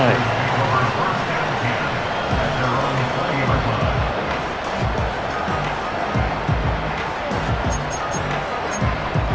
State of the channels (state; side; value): identical; both; correlation 1.00